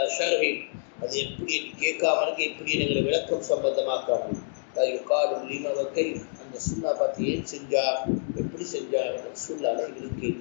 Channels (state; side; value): silent; right; digital silence